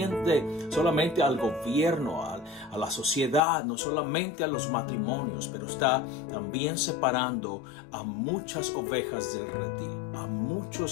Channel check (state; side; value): drops out; right; at 3.4 s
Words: al gobierno, a la sociedad, no solamente a los matrimonios, pero está también separando a muchas ovejas del redil, a